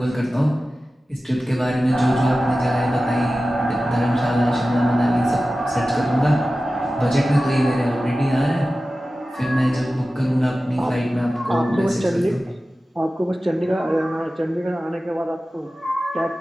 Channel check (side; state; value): both; normal; correlation 0.95